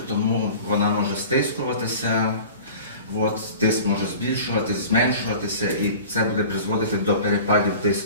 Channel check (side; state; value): both; inverted; correlation -0.40